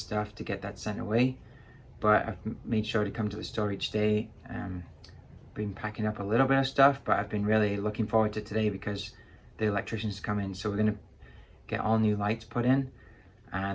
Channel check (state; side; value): identical; both; correlation 1.00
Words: to get that sent away. But I've made sure to come to the store each day. Been packing up a little bit of stuff, but I've been really looking forward to today because the electricians come in. So we're gonna get all new lights put in,